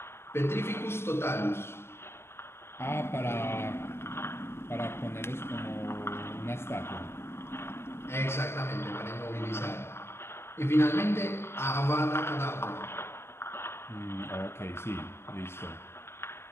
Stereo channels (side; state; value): right; late; 0.12 ms